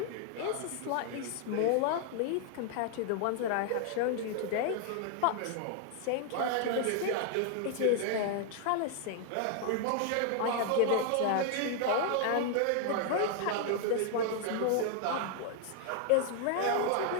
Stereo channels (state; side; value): different; both; correlation 0.00